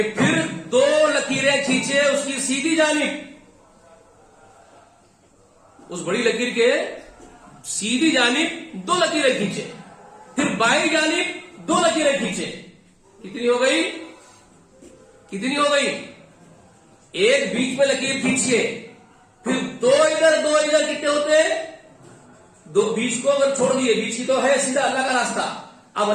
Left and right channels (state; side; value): identical; both; correlation 1.00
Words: پھر دو لکیریں کھینچے اس کی سیدھی جانب، اس بڑی لکیر کے سیدھی جانب دو لکیریں کھینچے. پھر بائیں جانب دو لکیریں کھینچے. کتنی ہو گئی؟ کتنی ہو گئی؟ ایک بیچ میں لکیر کھینچیے، پھر دو ادھر دو ادھر. کتنے ہوتے ہیں؟ دو. بیچ کو اگر چھوڑ دیے، بیچ کی تو ہے سیدھا اللہ کا راستہ. اب